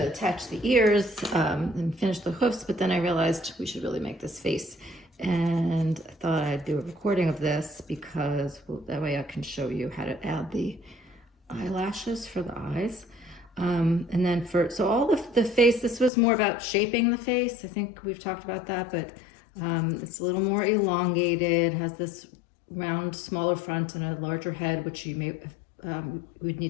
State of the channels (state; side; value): drops out; right; at 16.1 s